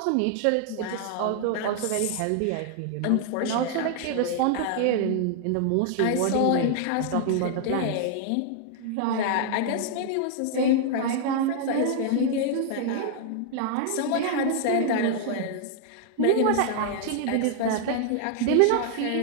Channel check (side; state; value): both; different; correlation 0.00